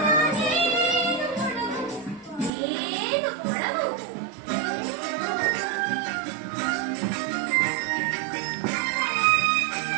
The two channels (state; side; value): drops out; left; at 2.5 s